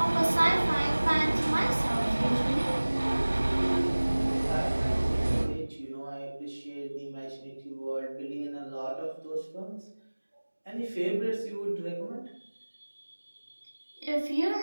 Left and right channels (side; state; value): both; inverted; correlation -1.00